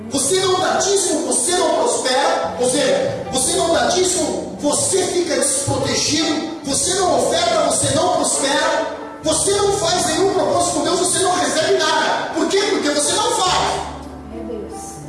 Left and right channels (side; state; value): both; identical; correlation 1.00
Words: Você não dá dízimo, você não prospera. Ou seja, você não dá dízimo, você fica desprotegido. Você não oferta, você não prospera. Você não faz nenhum propósito com Deus, você não recebe nada. Por quê? Porque você não faz.